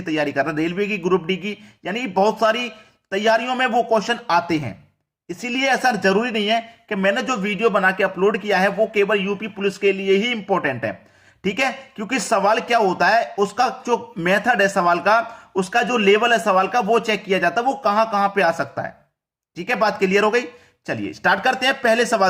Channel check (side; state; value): both; identical; correlation 1.00